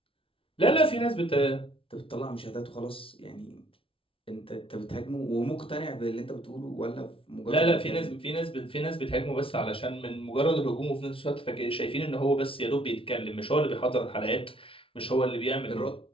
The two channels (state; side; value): late; right; 0.26 ms